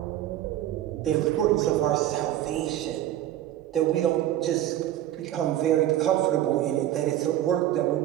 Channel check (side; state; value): left; quieter; 12.8 dB